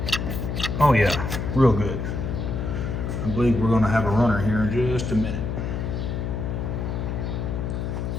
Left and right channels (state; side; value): noise; left; hum, 3 dB below the sound